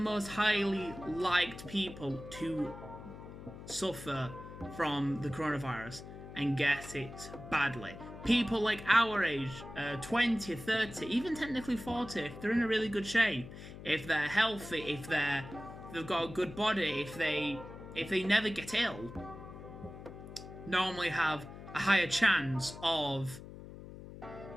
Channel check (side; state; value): left; noise; hum, 13 dB below the sound